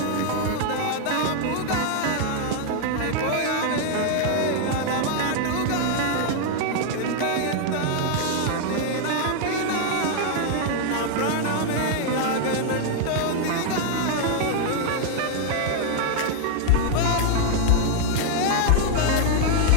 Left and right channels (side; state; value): both; different; correlation 0.00